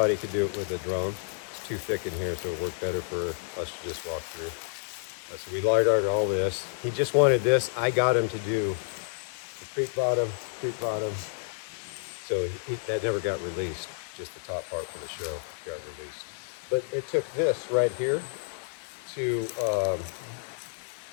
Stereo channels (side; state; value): right; silent; digital silence